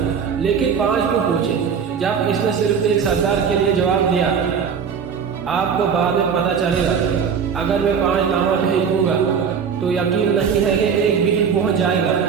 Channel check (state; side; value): quieter; left; 6.8 dB